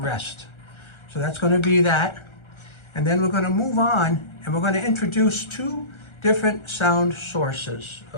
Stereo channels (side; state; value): right; late; 1.3 ms